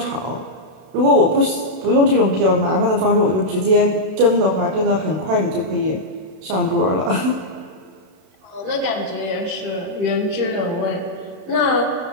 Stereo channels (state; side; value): late; left; 32 ms